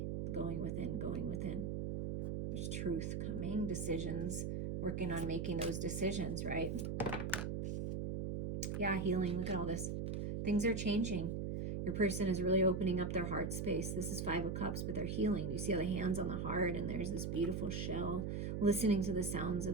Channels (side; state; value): right; noise; hum, 2 dB below the sound